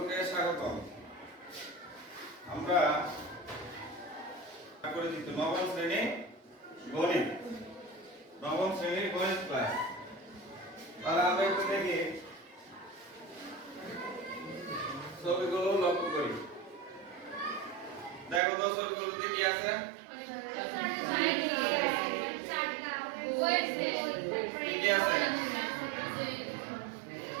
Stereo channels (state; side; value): drops out; left; at 18.4 s